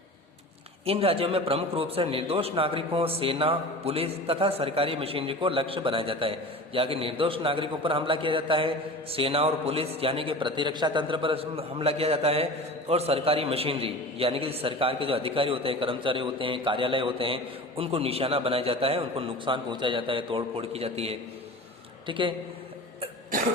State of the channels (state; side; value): normal; both; correlation 0.35